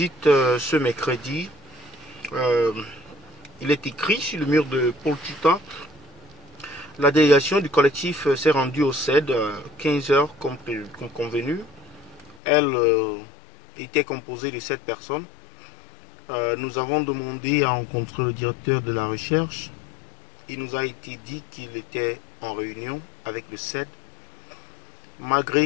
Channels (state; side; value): drops out; right; at 12.4 s